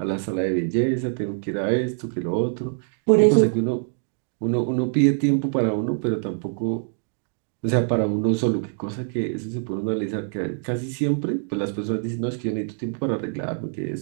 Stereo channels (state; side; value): silent; left; digital silence